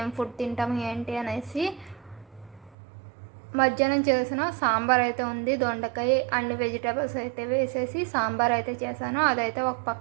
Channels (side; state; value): left; drops out; at 2.8 s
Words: ఫుడ్ తింటాము ఏంటి అనేసి. మధ్యాహ్నం చేసిన సాంబార్ అయితే ఉంది. దొండకాయ అన్ని వెజిటేబుల్స్ అయితే వేసేసి సాంబార్ అయితే చేశాను. అదైతే ఒక